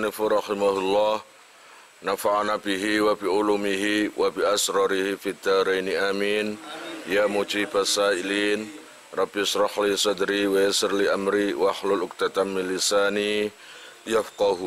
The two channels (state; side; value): identical; both; correlation 1.00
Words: rahimahullah, nafa'ana bihi wa bi ulumihi wa bi asrarihi fid dharaini amin. Ya mujibas sa'ilin, rabbi shrah li sadri wa yassir li amri wa hlul 'uqdatam min lisani